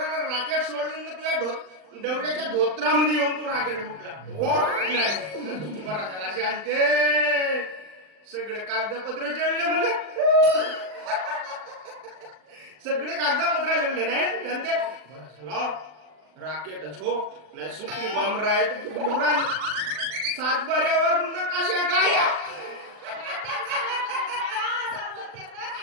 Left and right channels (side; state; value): left; late; 39 ms